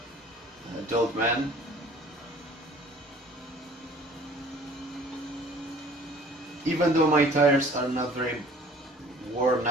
adult man. Even though my tires are not very worn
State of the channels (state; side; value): normal; both; correlation 0.51